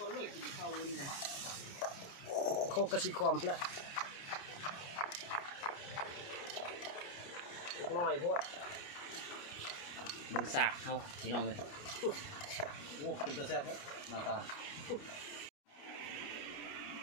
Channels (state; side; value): late; right; 29 ms